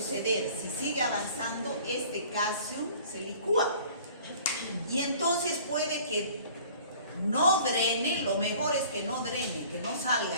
Si sigue avanzando, este caseum se licúa. Y entonces puede que no drene, lo mejor es que no drene, que no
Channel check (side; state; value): both; inverted; correlation -0.50